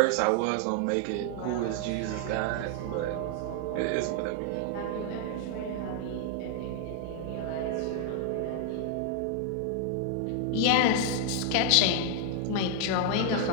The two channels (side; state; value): both; different; correlation 0.00